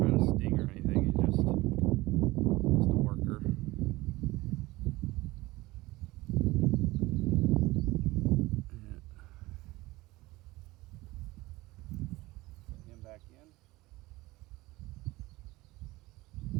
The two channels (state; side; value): quieter; left; 20.0 dB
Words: to sting or anything. He's just a worker. Yeah. Put him back in.